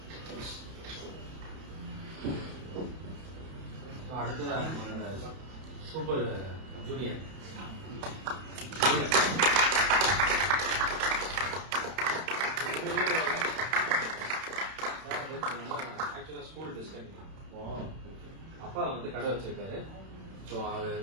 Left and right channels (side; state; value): left; late; 31 ms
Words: அடுத்ததாக நம்மளோட சூப்பர் ஜூனியர் ஆக்சுவலா ஸ்கூல் டிஸ்கண்டினியூ. அப்பா வந்து கடை வச்சிருக்காரு. ஸோ அவர்